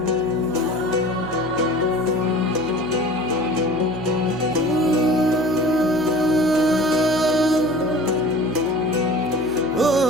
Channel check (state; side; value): noise; right; hum, 12 dB below the sound